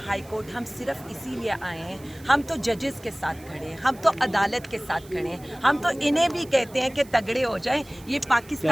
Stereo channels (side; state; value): right; noise; hiss, 23 dB below the sound